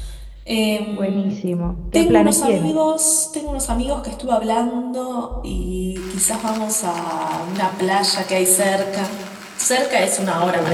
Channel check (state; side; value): identical; both; correlation 1.00